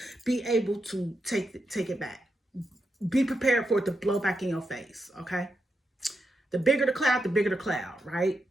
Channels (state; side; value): normal; both; correlation 0.85